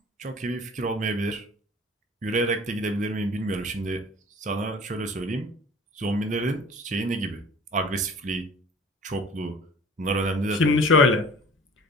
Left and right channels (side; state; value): both; normal; correlation 0.46